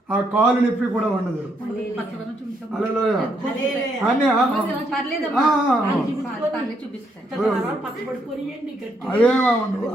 ఆ కాలు నొప్పి కూడా ఉండదు. హల్లెలూయా. అన్నీ అవేమో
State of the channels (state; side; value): normal; both; correlation 0.75